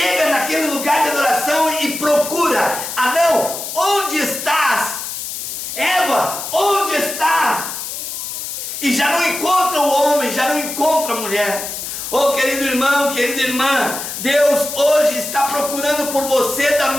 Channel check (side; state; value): left; noise; hiss, 6 dB below the sound